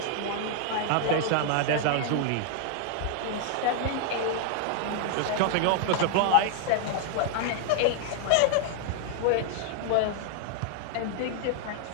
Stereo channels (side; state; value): both; different; correlation -0.01